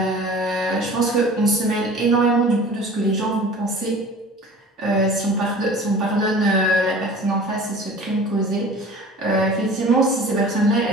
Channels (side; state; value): both; normal; correlation 0.42